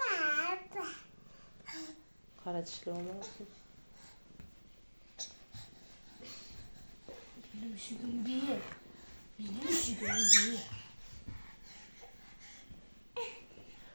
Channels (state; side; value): inverted; both; correlation -1.00